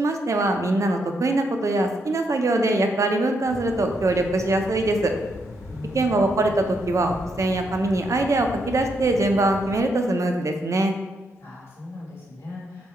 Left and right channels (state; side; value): normal; both; correlation 0.78